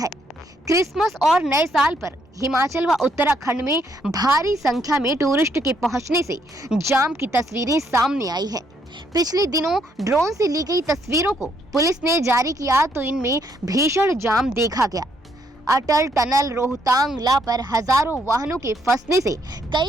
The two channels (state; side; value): normal; both; correlation 0.72